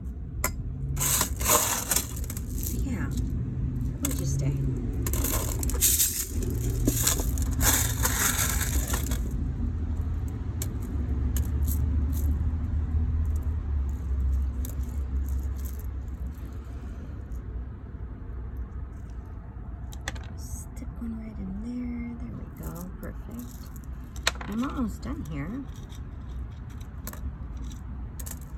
yeah, gorgeous day. Stick one right in there. There we go. Perfect. I'm almost done here.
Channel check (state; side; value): identical; both; correlation 1.00